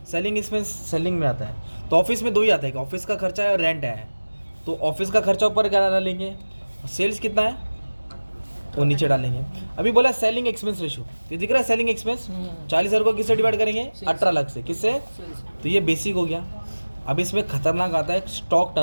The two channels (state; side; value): inverted; both; correlation -1.00